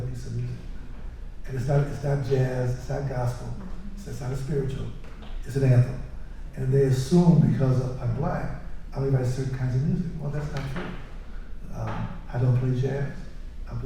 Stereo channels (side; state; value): both; identical; correlation 1.00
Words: piece of music. And it's not jazz, it's not gospel, it's not a spiritual, it's an anthem. And they assume because I'm black, I only write certain kinds of music. Well, that's not true. I don't play jazz. I